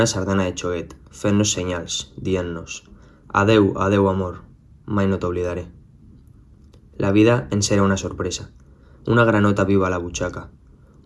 sardana de xoguet, fent-nos senyals, dient-nos «Adeu, adeu, amor, mai no t'oblidaré». La vida ens era una sorpresa, una granota viva a la butxaca,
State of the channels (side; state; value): both; identical; correlation 1.00